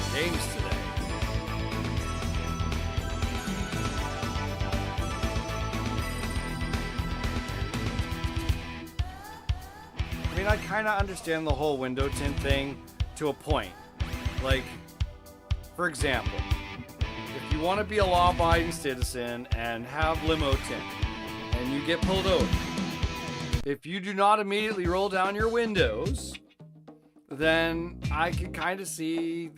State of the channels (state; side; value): identical; both; correlation 1.00